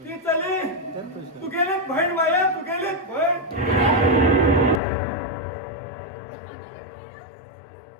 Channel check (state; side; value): drops out; right; at 4.8 s